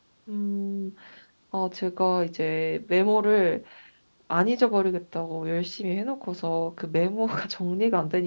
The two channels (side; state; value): both; inverted; correlation -1.00